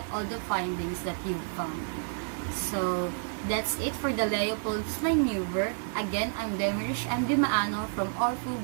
all the findings that you've found. So, that's it for the Leopold's maneuver. Again, I'm Demirish M. Dimaano from Orfu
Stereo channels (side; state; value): left; silent; 58 dB below the other